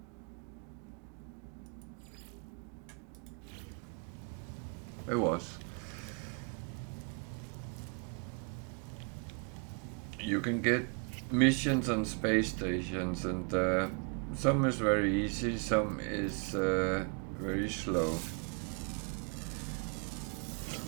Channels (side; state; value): left; quieter; 37.1 dB